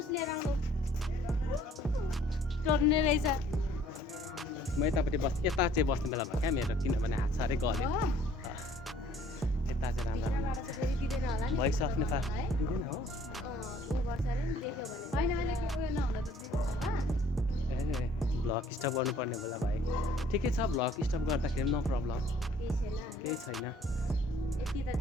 लिएर आउनु टर्ने रहेछ म यतापट्टि यता चाहिँ बस्ने बेला भयो क्या मेरो किनभने हात साह्रै गल्यो यता चाहिँ राम्रो भोइस अफ नेपाल दिँदैन हो भ्लग स्टप गर्नुपर्ने बेला भाइ ठिकै छ भ्लग स्टप गर्दाखेरि नो प्रब्लम केही छैन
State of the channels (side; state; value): both; normal; correlation 0.58